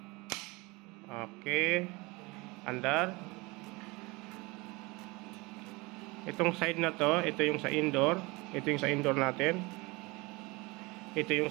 Okay, andar. Itong side na to, ito yung sa indoor. Ito yung sa indoor natin. Ito yung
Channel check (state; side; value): quieter; left; 24.6 dB